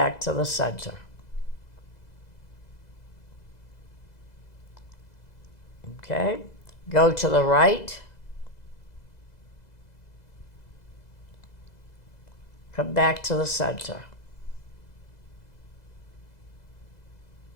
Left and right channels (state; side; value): late; right; 2.0 ms